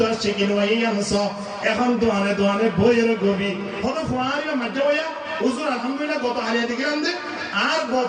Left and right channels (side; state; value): both; identical; correlation 1.00